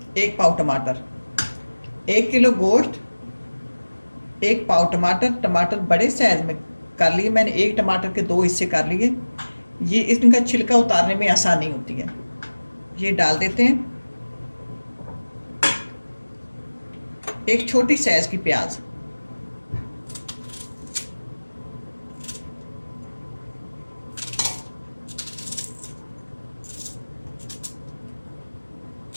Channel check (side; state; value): both; inverted; correlation -1.00